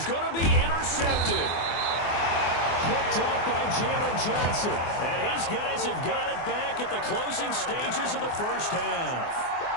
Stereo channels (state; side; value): late; right; 24 ms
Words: going to be intercepted. Picked off by Jalen Johnson. And his guys have got it back at the closing stages of the 1st half.